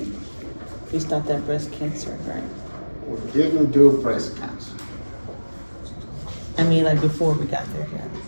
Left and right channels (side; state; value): both; inverted; correlation -1.00